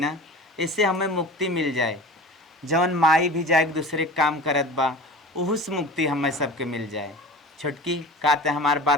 इससे हमें मुक्ति मिल जाए। जौन माई भी जाए दूसरे काम करत बा, उस मुक्ति हमें सबके मिल जाए। छुटकी कहते हमार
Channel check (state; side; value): normal; both; correlation 0.37